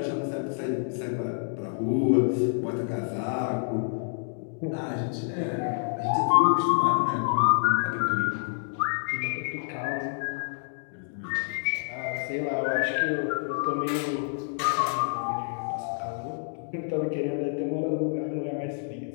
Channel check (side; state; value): right; silent; digital silence